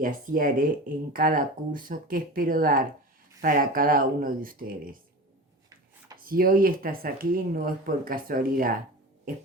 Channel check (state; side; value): normal; both; correlation 0.32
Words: así haré en cada curso que espero dar para cada uno de ustedes. Si hoy estás aquí no es por casualidad, es